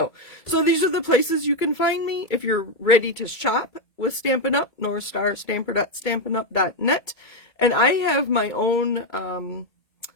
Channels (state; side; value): late; right; 2.2 ms